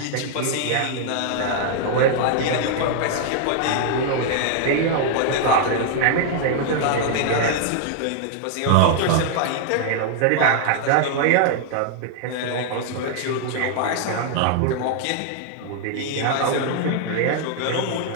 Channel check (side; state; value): both; different; correlation 0.00